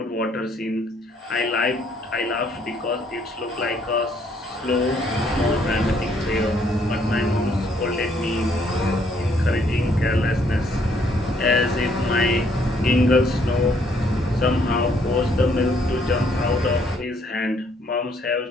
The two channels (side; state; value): both; normal; correlation 0.67